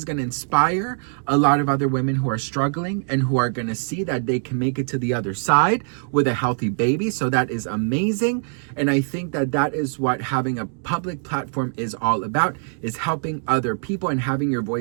going to inspire a lot of other women who are struggling and who are going to see that they can make it to the other side with a healthy baby. So that is amazing. And I think that is what having a public platform is all about, is helping other people and having your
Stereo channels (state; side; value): silent; left; 62 dB below the other